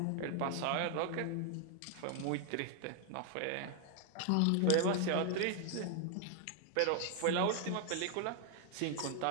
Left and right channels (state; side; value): different; both; correlation 0.00